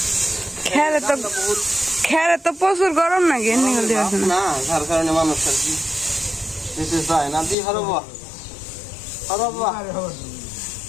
খেরে তো প্রচুর গরম নাকি না, যার কারণে মানুষ আর কি দিতে চায় না। দি হরব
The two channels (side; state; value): right; drops out; at 7.6 s